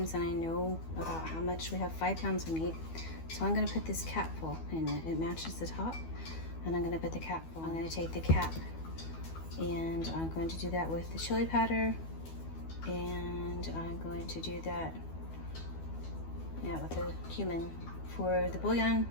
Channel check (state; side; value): late; right; 12 ms